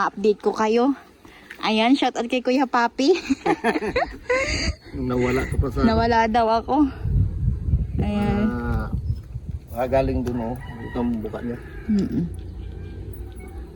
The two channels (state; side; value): identical; both; correlation 1.00